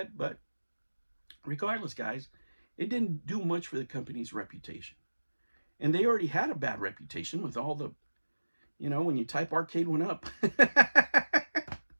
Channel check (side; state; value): both; inverted; correlation -1.00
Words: but regardless, guys, it didn't do much for the company's reputation. And they already had a bad reputation with all the, when you type arcade one up,